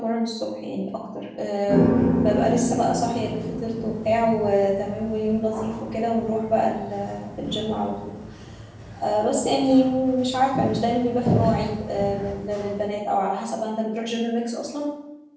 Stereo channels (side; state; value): both; identical; correlation 1.00